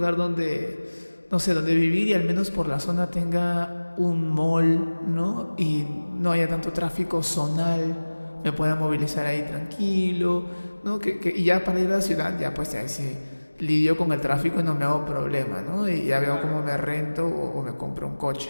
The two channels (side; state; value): both; inverted; correlation -1.00